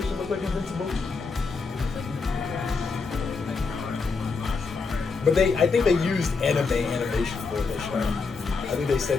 look like Invincible? But I think they used animation for this show. I think they said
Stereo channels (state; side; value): quieter; right; 4.5 dB